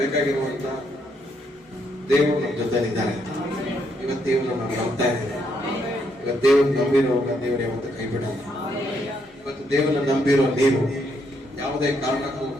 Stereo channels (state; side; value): normal; both; correlation 0.75